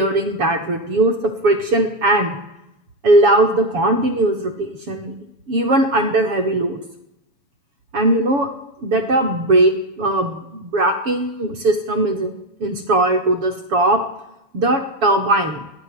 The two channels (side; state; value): left; late; 7.1 ms